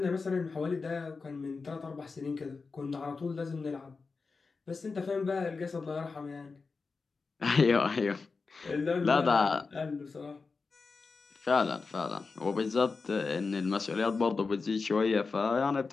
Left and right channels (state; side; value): quieter; right; 4.4 dB